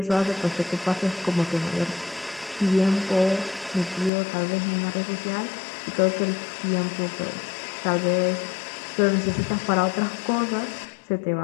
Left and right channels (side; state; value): right; drops out; at 4.1 s